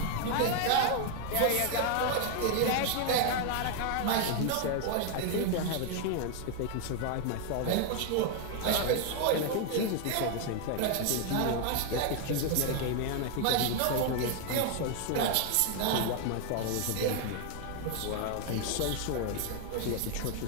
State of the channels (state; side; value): different; both; correlation 0.00